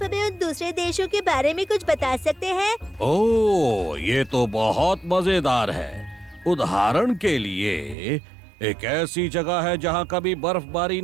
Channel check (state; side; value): drops out; left; at 8.0 s